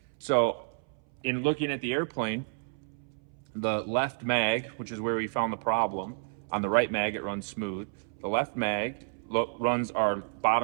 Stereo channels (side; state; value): left; silent; 58 dB below the other